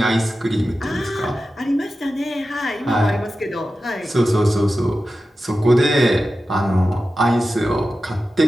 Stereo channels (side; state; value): both; normal; correlation 0.93